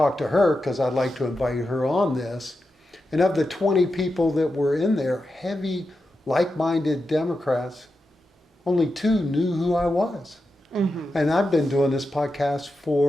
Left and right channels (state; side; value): normal; both; correlation 0.89